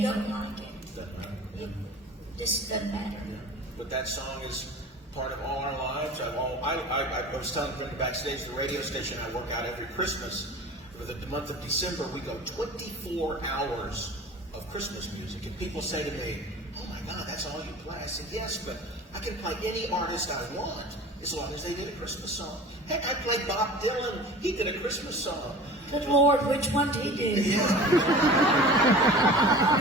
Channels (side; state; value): both; normal; correlation 0.39